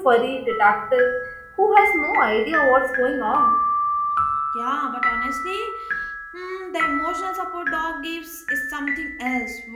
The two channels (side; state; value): both; identical; correlation 1.00